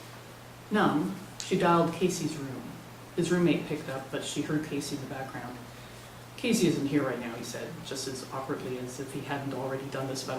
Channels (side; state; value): both; identical; correlation 1.00